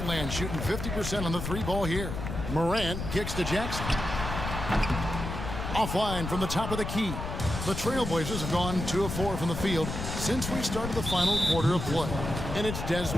land, shooting 50% on the three ball here. Morant kicks to Jackson. Offline from the top of the key. The Trailblazers have gone 2 of 4 from the field since we started the final quarter of play. And it's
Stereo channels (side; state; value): left; noise; rumble, 5 dB below the sound